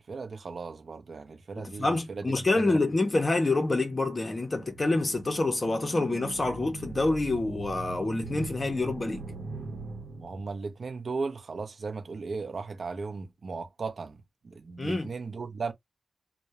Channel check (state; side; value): normal; both; correlation 0.93